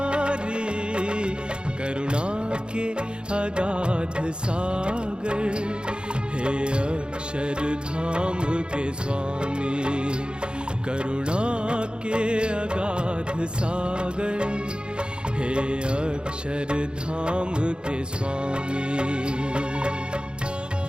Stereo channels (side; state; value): left; late; 0.052 ms